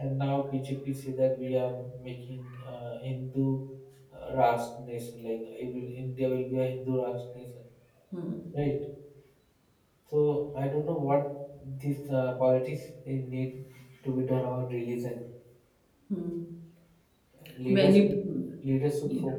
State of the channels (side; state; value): both; identical; correlation 1.00